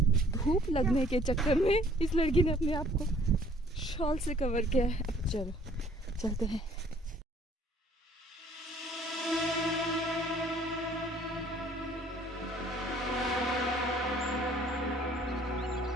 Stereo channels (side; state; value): both; normal; correlation 0.58